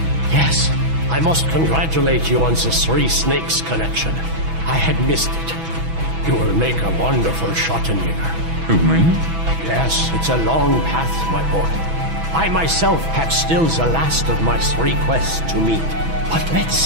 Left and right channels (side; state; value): left; late; 6.1 ms